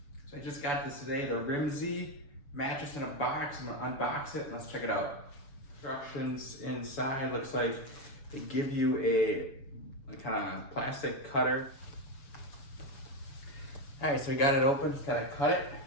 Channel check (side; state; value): right; late; 7.1 ms